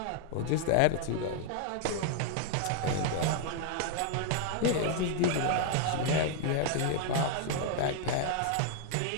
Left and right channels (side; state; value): both; different; correlation 0.00